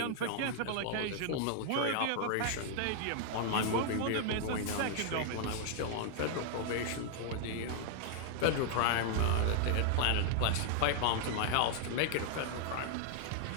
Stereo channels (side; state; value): both; different; correlation -0.01